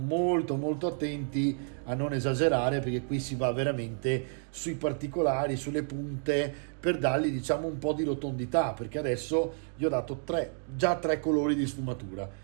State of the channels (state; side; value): silent; left; 58 dB below the other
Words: molto attenti a non esagerare, perché qui si va veramente sui particolari, sulle punte, per dargli diciamo un po' di rotondità, perché adesso gli ho dato già tre colori di sfumatura.